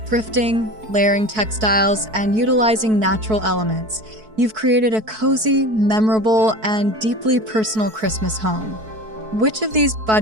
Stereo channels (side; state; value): left; late; 4.6 ms